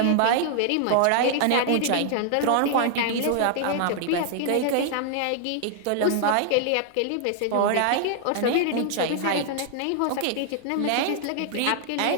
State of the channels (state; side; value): different; both; correlation -0.01